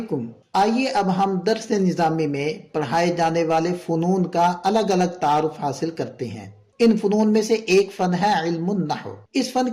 آئیے اب ہم درس نظامی میں پڑھائے جانے والے فنون کا الگ الگ تعارف حاصل کرتے ہیں۔ ان فنون میں سے ایک فن ہے علم النحو۔ اس فن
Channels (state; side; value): identical; both; correlation 1.00